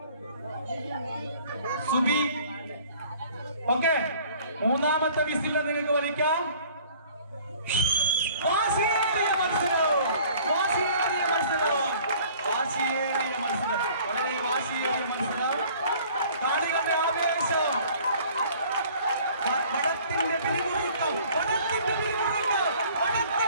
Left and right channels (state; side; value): inverted; both; correlation -0.52